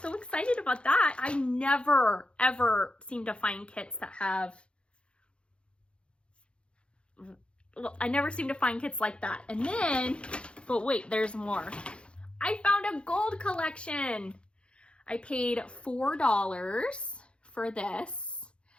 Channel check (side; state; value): right; late; 0.057 ms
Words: excited about that. I never, ever seem to find kits that have, I never seem to find kits like that. And then, but wait, there's more. I found a gold collection. I paid $4 for this.